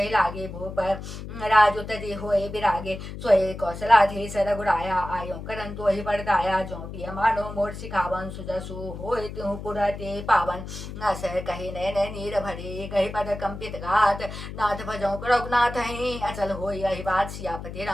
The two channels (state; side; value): noise; left; hum, 9 dB below the sound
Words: लागे भूप राजु तजी होए बिरागे सोए कौशलाधीश रघुराया आयो करन तो ही परदाया जो पिय मानो मोर सिखावन सुजसु होए तिहु पुरते पावन न सह कही नैन नीर भरे कही पद कंपित घात नाथ भजौ रघुनाथ ही अचल होई यही बात सियापति